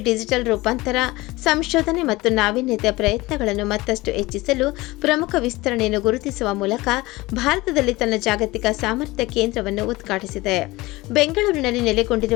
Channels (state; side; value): quieter; right; 20.5 dB